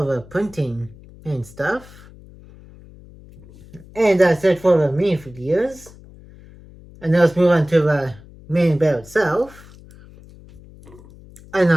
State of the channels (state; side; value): noise; left; hum, 22 dB below the sound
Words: the printing and stuff. And that's it for the minifigures. And now let's move on to the main build itself. And